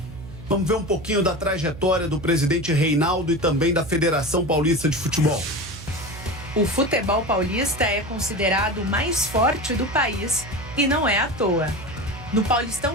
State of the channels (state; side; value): noise; right; hum, 14 dB below the sound